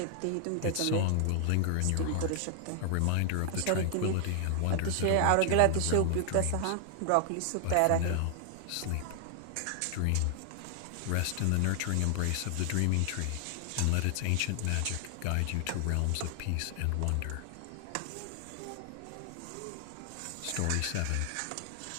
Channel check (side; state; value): both; different; correlation 0.00